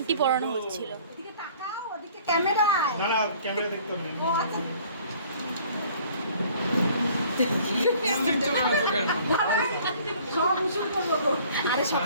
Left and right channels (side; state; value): both; inverted; correlation -0.54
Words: পরানো হচ্ছিল। আরে